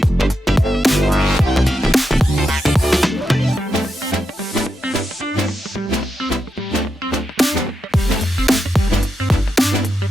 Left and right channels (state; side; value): normal; both; correlation 0.86